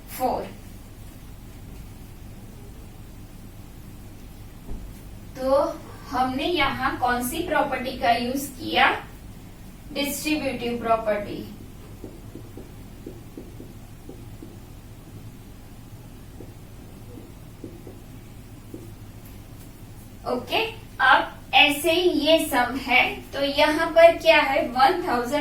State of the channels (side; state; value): both; identical; correlation 1.00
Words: तो हमने यहाँ कौन सी प्रॉपर्टी का यूज किया डिस्ट्रीब्यूटिव प्रॉपर्टी। ओके, अब ऐसे ही ये सम है तो यहाँ पर क्या है